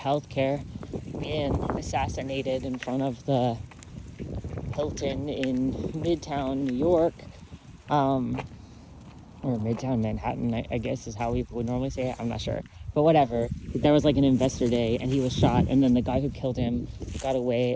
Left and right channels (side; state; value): both; identical; correlation 1.00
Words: being assassinated in front of the Hilton in Midtown New York, or Midtown Manhattan, I guess is how we would normally say it. I'm not sure, but whatever. There was like an investor day and he was shot, and then the guy who killed him got